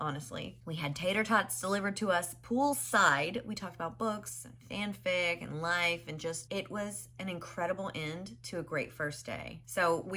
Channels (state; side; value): identical; both; correlation 1.00